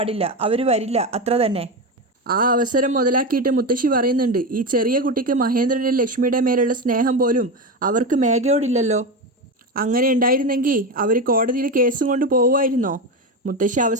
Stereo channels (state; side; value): normal; both; correlation 0.17